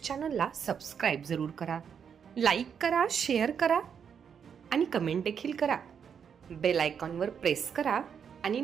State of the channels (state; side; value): quieter; left; 7.3 dB